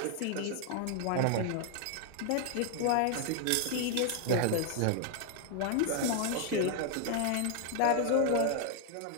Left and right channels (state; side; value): different; both; correlation 0.00